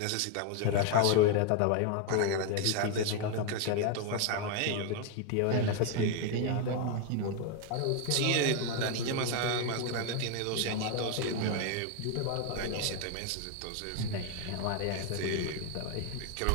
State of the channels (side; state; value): both; different; correlation 0.01